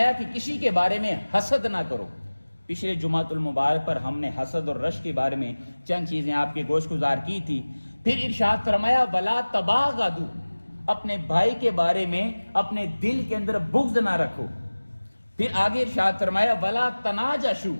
کہ کسی کے بارے میں حسد نہ کرو۔ پچھلے جمعۃ المبارک پر ہم نے حسد اور رش کے بارے میں چند چیزیں آپ کے گوش گزار کی تھی۔ پھر ارشاد فرمایا ولا تباغضوا، اپنے بھائی کے بارے میں اپنے دل کے اندر بغض نہ رکھو۔ پھر آگے ارشاد فرمایا ولا تناجشوا،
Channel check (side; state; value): both; inverted; correlation -1.00